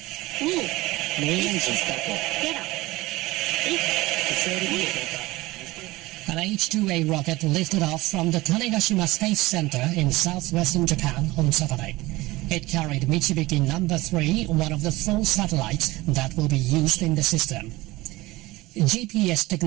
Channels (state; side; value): quieter; left; 19.8 dB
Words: An H-2A rocket lifted off from the Tanegashima Space Center in southwestern Japan on Saturday. It carried Michibiki No. 3, one of the 4 satellites that will be used in the system. GPS